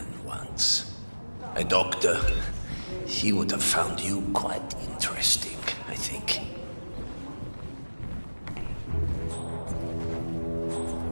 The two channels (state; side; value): inverted; both; correlation -1.00